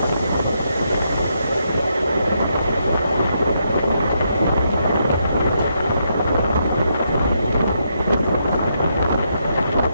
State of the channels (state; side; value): inverted; both; correlation -0.79